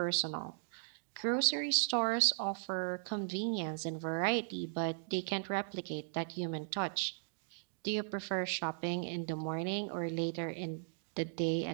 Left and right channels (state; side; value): silent; left; digital silence